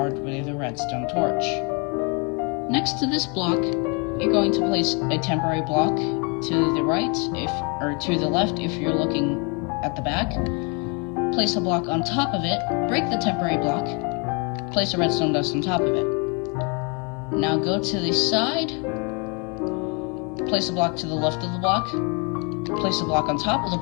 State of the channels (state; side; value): quieter; right; 33.4 dB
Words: with a redstone torch. Next to this block, you're going to place a temporary block to the right, or to the left if you're looking at the back. Place a block on top of it, break the temporary block, place a redstone dust on top of it. Now go to the side, place a block to the left of the block, place a block on top of the